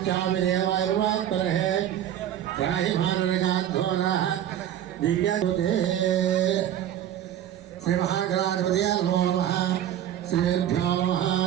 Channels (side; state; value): left; quieter; 11.0 dB